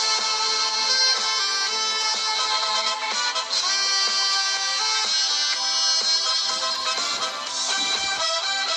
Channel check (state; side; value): identical; both; correlation 1.00